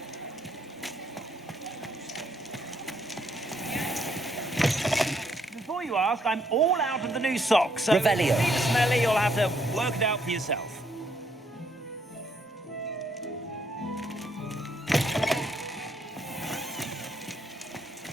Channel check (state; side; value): normal; both; correlation 0.71